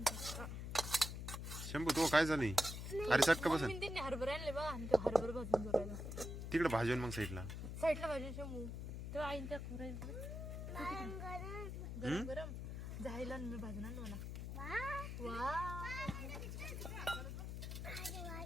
शंभू तो काय झाली? अरे चटका बसन त्यांनी हरभरे आणले बघा आणि ते हरभरे भाजून जोरायला तिकडे भाजून मग साईडला भाजून शंभू तेव्हा आईन त्या गरम गरम जायला मी भाजून आणलो ना. वा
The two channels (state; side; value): noise; left; hum, 5 dB below the sound